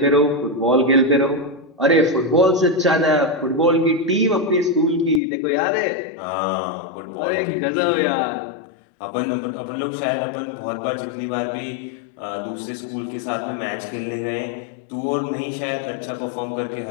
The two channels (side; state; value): right; drops out; at 5.2 s